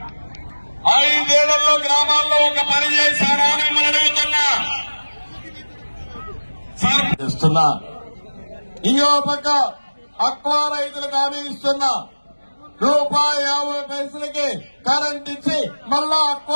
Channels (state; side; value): inverted; both; correlation -1.00